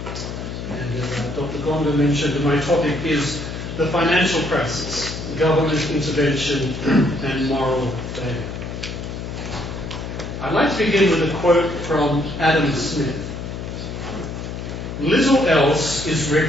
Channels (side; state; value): left; noise; hum, 7 dB below the sound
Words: And as Dr. Gonda mentioned, my topic is the financial crisis, government intervention and moral failure. I'd like to begin with a quote from Adam Smith. "Little else is